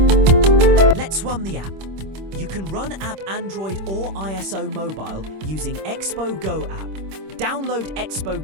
Let's run the app. You can run app Android or ISO mobile using Expo Go app. Download Expo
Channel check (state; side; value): late; left; 26 ms